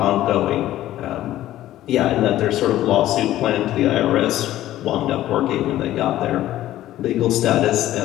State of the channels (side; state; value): right; quieter; 14.0 dB